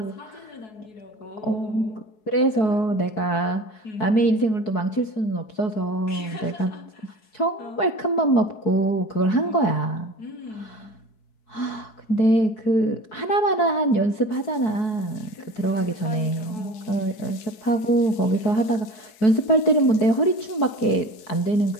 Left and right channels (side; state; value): right; late; 4.7 ms